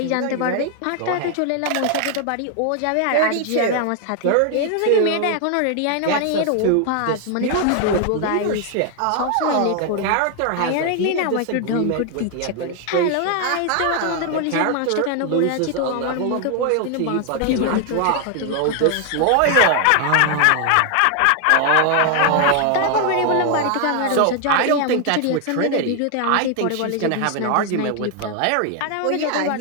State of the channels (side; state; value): both; different; correlation 0.00